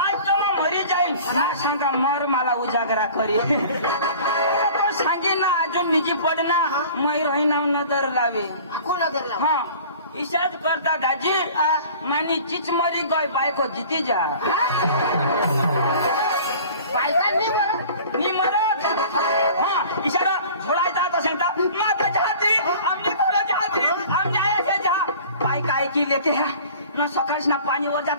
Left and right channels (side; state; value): both; inverted; correlation -0.45